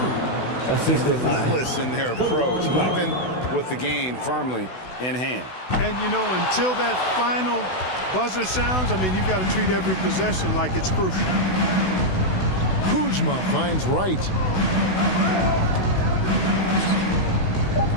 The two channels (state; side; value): late; right; 16 ms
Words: Relentless in their approach, even with the game firmly in hand. And, you know, until that final buzzer sounds, I mean, you've got to treat every possession like it's crucial. Kuzma finds Wright.